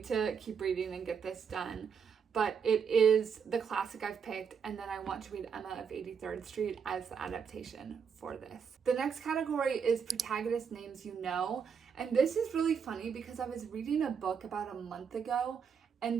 to keep reading and get this done. But it is the classic I've picked, and then I want to read Emma of 83rd Street as the adaptation for this. The next category is protagonist names you know, and this is really funny because I was reading a book about a month ago,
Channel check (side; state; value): left; quieter; 6.6 dB